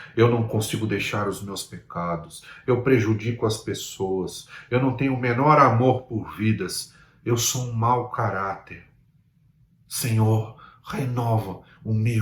Eu não consigo deixar os meus pecados. Eu prejudico as pessoas. Eu não tenho o menor amor por vidas. Eu sou um mau caráter. Senhor, renova o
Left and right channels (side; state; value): both; identical; correlation 1.00